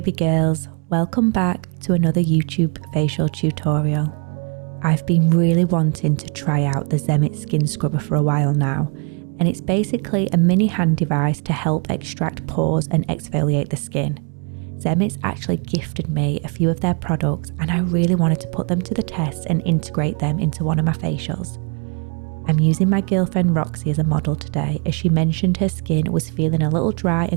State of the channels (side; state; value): left; quieter; 37.6 dB